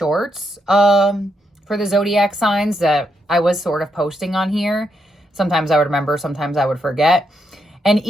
for the zodiac signs that I was sort of posting on here. Sometimes I would remember, sometimes I would forget. And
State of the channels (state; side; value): normal; both; correlation 0.79